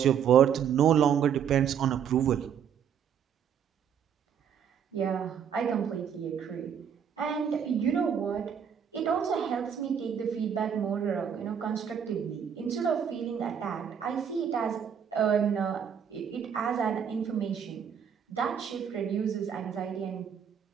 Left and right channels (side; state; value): left; quieter; 8.1 dB